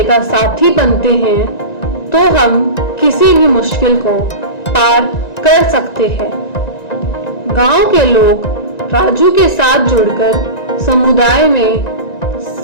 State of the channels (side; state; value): right; late; 1.9 ms